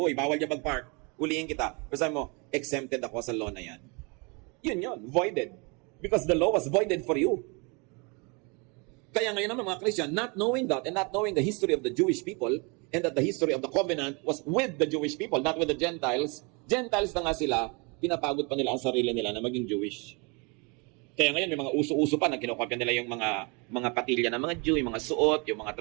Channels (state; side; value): quieter; left; 31.1 dB